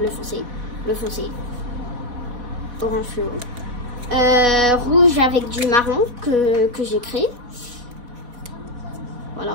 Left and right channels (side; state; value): left; late; 4.1 ms